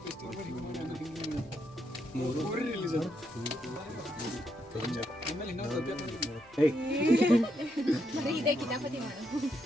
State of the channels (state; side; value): normal; both; correlation 0.79